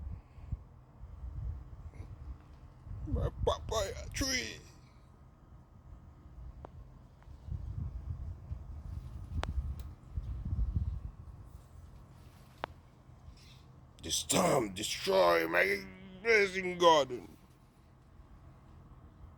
My papaya tree. This time destroy my blazing garden.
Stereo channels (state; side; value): identical; both; correlation 1.00